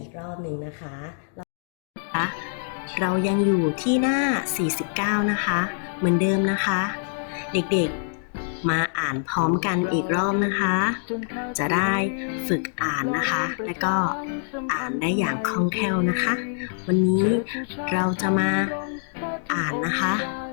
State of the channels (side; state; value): right; silent; digital silence